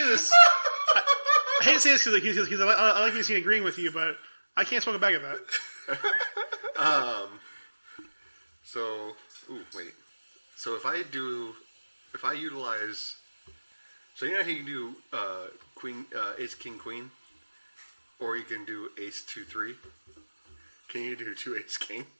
this. I hate to say this because I like being seen agreeing with you, but I can't smoke a bag of that. So, wait. So if I utilize, so you know how you can do queen, ace, king, queen, or you can do ace, 2, 3. Can you do 2 ace, king?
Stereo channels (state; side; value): inverted; both; correlation -1.00